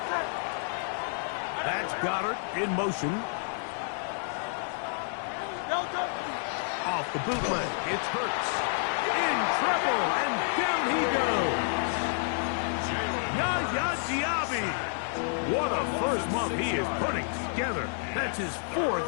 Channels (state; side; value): silent; right; 57 dB below the other